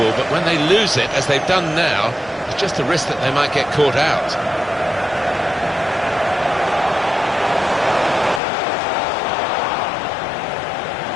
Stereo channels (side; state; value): right; drops out; at 8.4 s